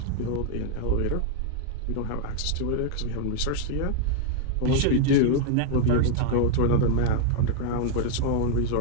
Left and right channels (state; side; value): different; both; correlation -0.01